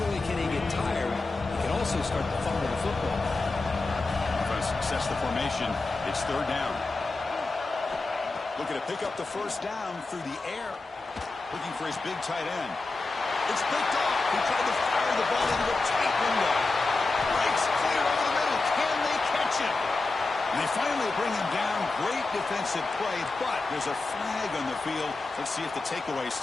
only can he get tired, he can also start to fumble the football. Offense sets the formation. It's third down. Looking to pick up the first down through the air. Looking for his big tight end. It's picked off. He tried to fire the ball into a tight window. Breaks clear over the middle. Can they catch him? And they finally bring him down. Great defensive play, but there's a flag on the field. Let's see if the takeaway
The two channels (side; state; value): right; quieter; 3.5 dB